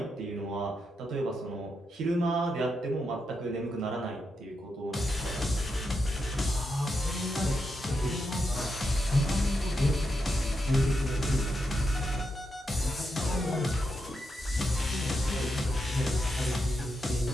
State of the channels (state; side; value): normal; both; correlation 0.84